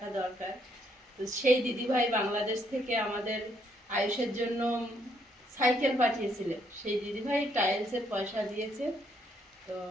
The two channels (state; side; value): normal; both; correlation 0.72